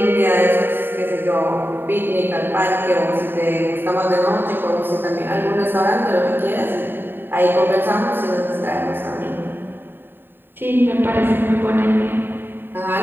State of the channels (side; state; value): left; late; 0.096 ms